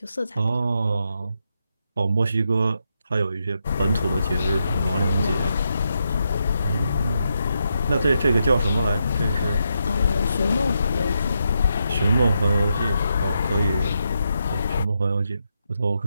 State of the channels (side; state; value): both; inverted; correlation -0.83